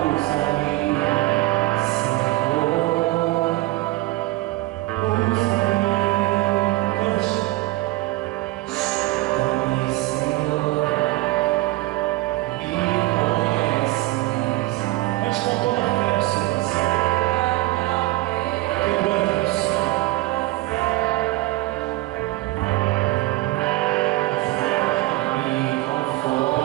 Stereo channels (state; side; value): quieter; left; 19.0 dB